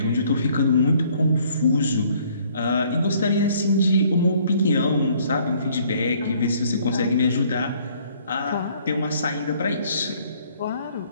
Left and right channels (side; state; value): both; inverted; correlation -0.61